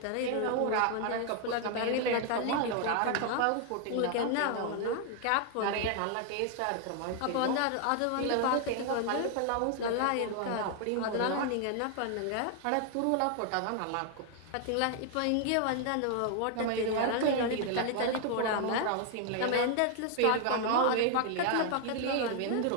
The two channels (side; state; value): both; different; correlation 0.00